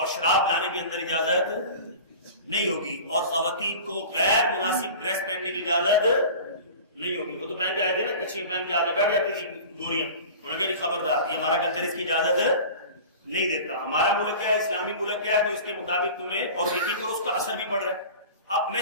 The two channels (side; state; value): both; inverted; correlation -0.37